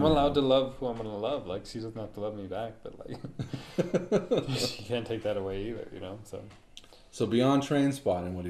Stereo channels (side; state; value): both; identical; correlation 1.00